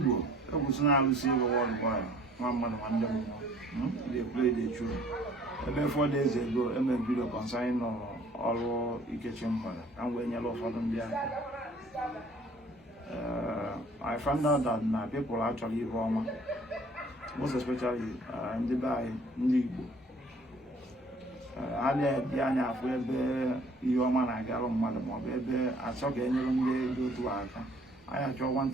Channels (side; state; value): both; normal; correlation 0.55